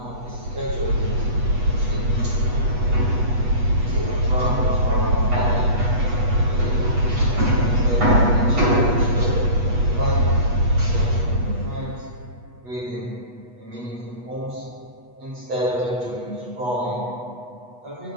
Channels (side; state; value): left; late; 8.2 ms